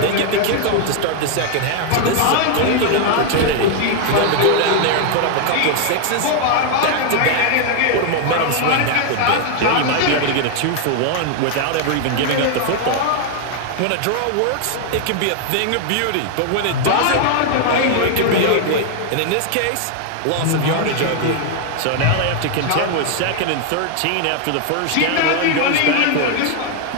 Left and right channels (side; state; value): both; different; correlation 0.00